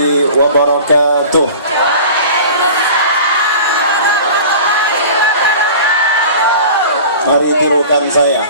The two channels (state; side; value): inverted; both; correlation -0.40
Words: wabarakatuh. Mari tirukan saya.